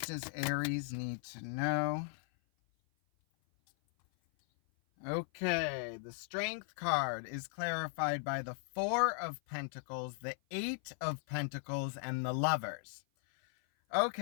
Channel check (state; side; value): silent; right; 53 dB below the other